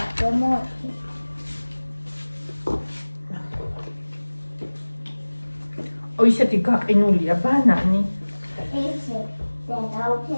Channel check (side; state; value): both; inverted; correlation -1.00